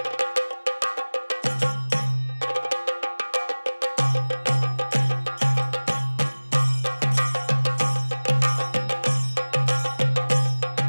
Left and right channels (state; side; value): inverted; both; correlation -1.00